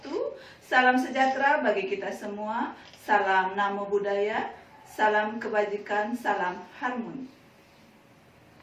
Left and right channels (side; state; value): both; identical; correlation 1.00